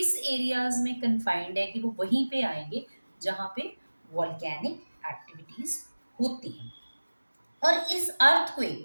एरियाज में कन्फाइंड है कि वो वहीं पे आएंगे जहां पे वॉल्केनिक एक्टिविटीज होती हैं। और इस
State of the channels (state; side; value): inverted; both; correlation -1.00